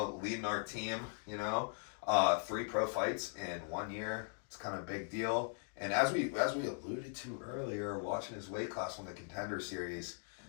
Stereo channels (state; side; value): silent; right; 51 dB below the other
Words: our team, 3 pro fights in 1 year. It's kind of a big deal. And as we alluded to earlier, watching his weight class win the Contender Series,